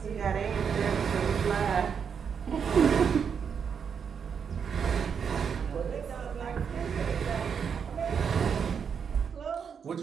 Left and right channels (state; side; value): quieter; left; 6.9 dB